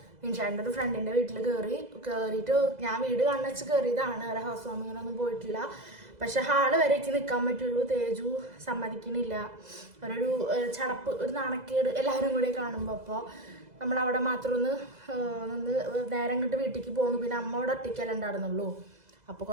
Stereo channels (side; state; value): left; late; 2.0 ms